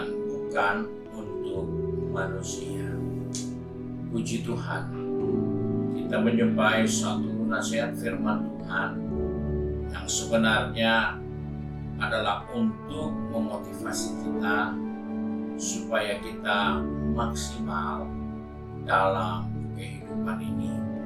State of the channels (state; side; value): identical; both; correlation 1.00